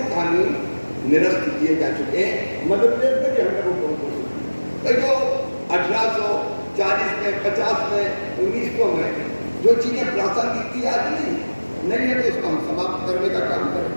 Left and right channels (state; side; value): inverted; both; correlation -1.00